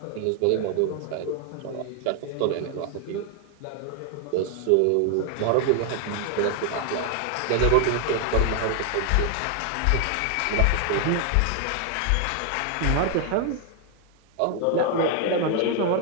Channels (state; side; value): different; both; correlation 0.00